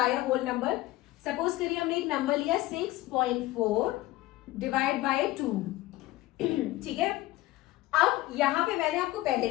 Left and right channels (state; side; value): quieter; right; 17.6 dB